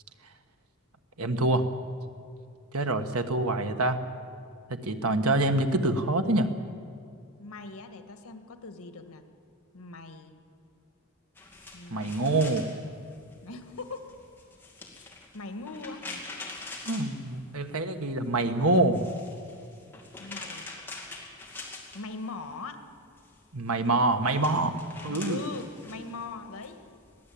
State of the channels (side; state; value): both; normal; correlation 0.12